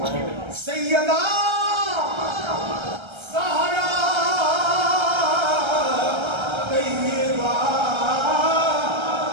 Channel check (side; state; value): left; late; 1.3 ms